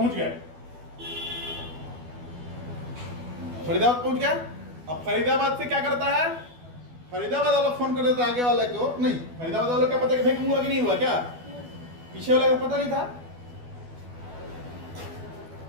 गए, फरीदाबाद पहुंच गया। अब फरीदाबाद से क्या करता है, फरीदाबाद वाला फोन कर देता आगे वाले को, नहीं फरीदाबाद वाले को क्या पता कि वैक्यूम हुआ कि नहीं हुआ, क्या पीछे वाले को पता नहीं था।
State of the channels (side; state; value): left; late; 12 ms